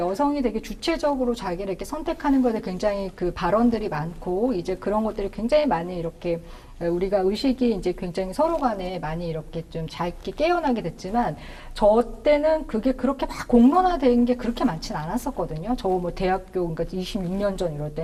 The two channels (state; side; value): identical; both; correlation 1.00